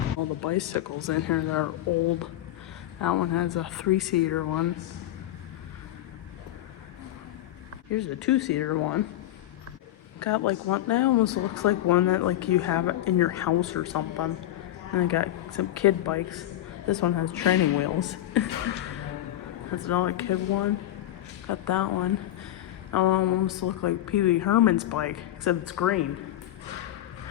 All the bicycles in here that are old. That one has a 3-seater one. Here's a 2-seater one. Got like one that almost looks like one that like you have it in your house or something. And I got some kid bikes. This one has training wheels. That's another kid one. Got that one. That one almost looks like Pee Wee Herman's bike, except it's green.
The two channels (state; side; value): quieter; right; 13.5 dB